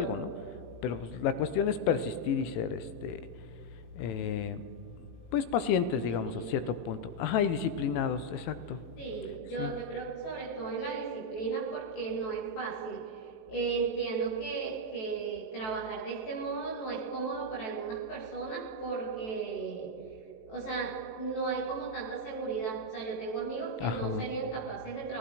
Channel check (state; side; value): late; right; 18 ms